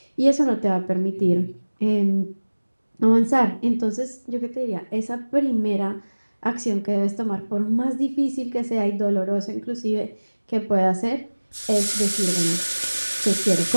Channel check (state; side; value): inverted; both; correlation -1.00